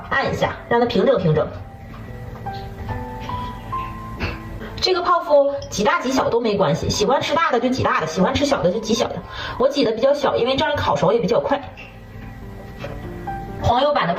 按一下，让它平整平整。这个泡芙挤大挤小都没关系，喜欢吃大的就挤大的，喜欢吃小的就挤小的。我挤的比较小，因为这样烤熟也比较快。黄油版的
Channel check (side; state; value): both; identical; correlation 1.00